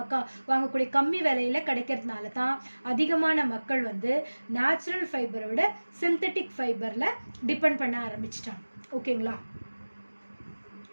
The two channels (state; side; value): inverted; both; correlation -1.00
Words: வாங்கக்கூடிய கம்மி விலையில் கிடைக்கிறதுனால தான் அதிகமான மக்கள் வந்து நேச்சுரல் ஃபைபரை விட சிந்தட்டிக் ஃபைபரில் டிபெண்ட் பண்ண ஆரம்பிச்சிட்டாங்க. ஓகேங்களா?